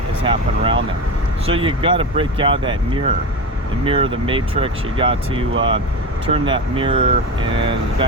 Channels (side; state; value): both; normal; correlation 0.23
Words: has happened around them. So you got to break out of that mirror, the mirror of the matrix. You got to turn that mirror and